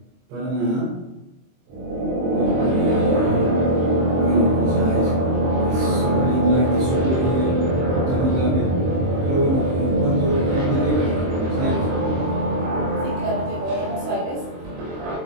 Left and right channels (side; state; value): left; late; 23 ms